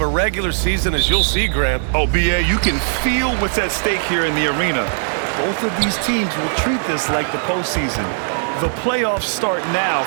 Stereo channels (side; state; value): left; silent; 67 dB below the other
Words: a regular season as you'll see, Grant. Oh, B.A., you can feel what's at stake here in the arena. Both of these teams will treat this like the postseason. The playoffs start now